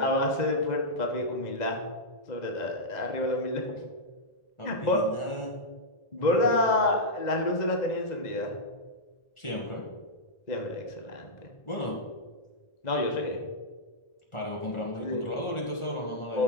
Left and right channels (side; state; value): right; late; 1.4 ms